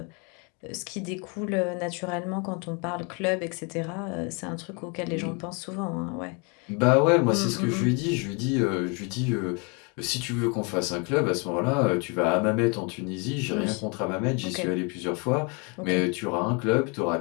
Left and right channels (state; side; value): quieter; right; 33.4 dB